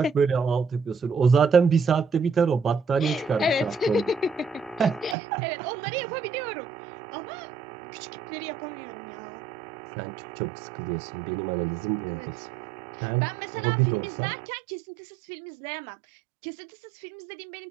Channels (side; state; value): left; drops out; at 5.2 s